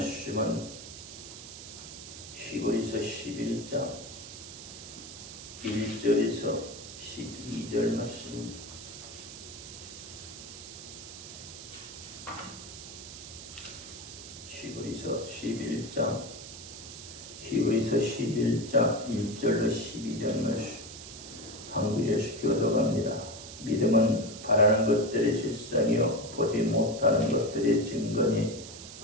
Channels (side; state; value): right; noise; hiss, 12 dB below the sound